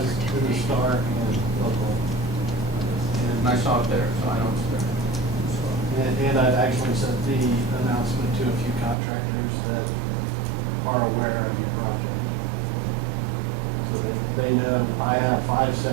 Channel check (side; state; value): left; drops out; at 9.0 s